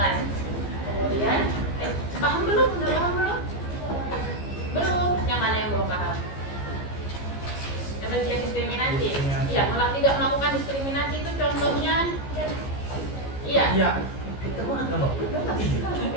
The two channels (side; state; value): right; late; 15 ms